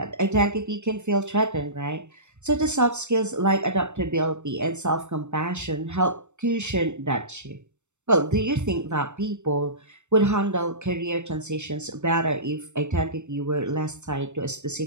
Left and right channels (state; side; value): late; left; 0.84 ms